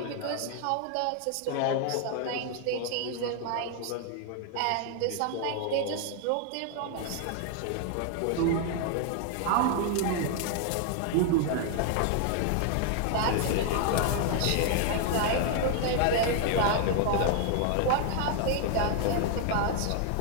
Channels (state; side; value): different; both; correlation 0.00